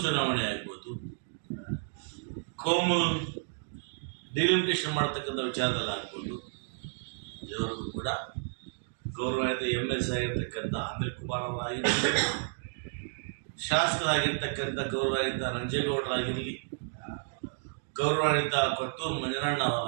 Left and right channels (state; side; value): silent; left; digital silence